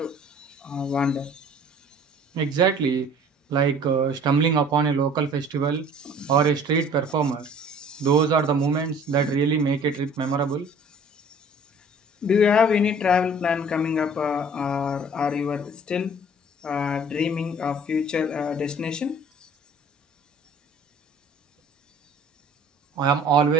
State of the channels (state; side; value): normal; both; correlation 0.50